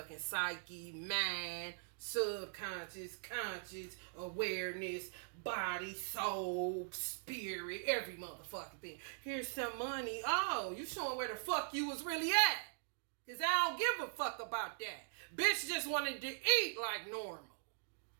psyche, mind, subconscious, conscious, awareness, body, soul, spirit, every motherfucking thing. Here's some money. Oh, you showing where the fuck you was really at. Because I don't give a fuck about that. Bitch just wanted to eat like normal.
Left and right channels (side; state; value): left; silent; digital silence